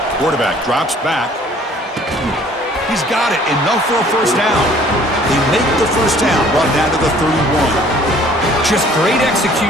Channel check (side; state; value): both; normal; correlation 0.55